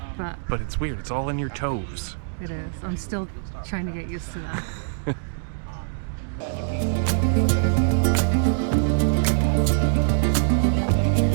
But it's weird. It's all in your toes. it is. I'm still trying to get used to that.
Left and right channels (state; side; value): silent; left; 63 dB below the other